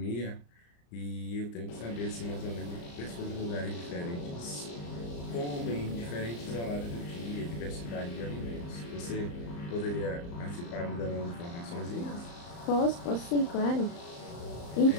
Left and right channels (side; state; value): right; late; 34 ms